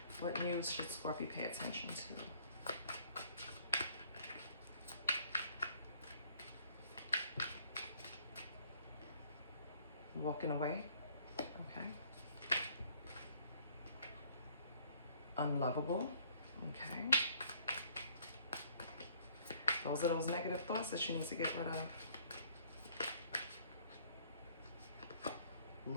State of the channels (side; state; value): both; inverted; correlation -0.61